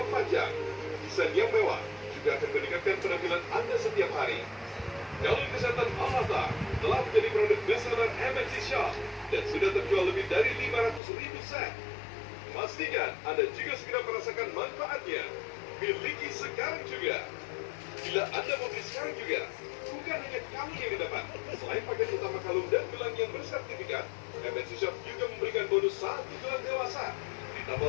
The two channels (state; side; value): drops out; right; at 11.0 s